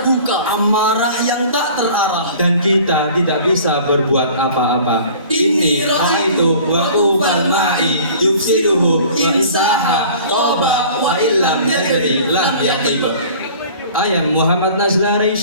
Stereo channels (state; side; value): inverted; both; correlation -0.47